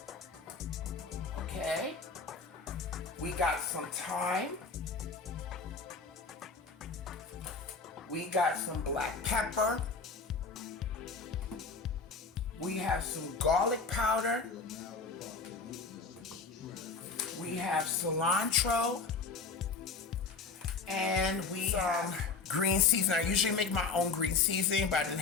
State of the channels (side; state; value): right; quieter; 4.5 dB